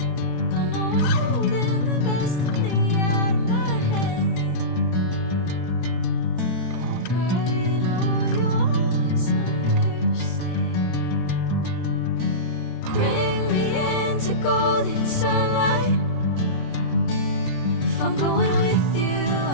Golden sunlight. If I'm going with you,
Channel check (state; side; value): late; right; 23 ms